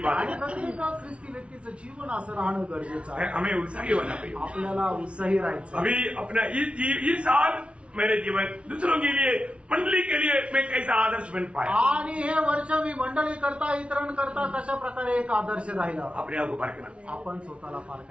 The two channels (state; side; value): late; left; 0.060 ms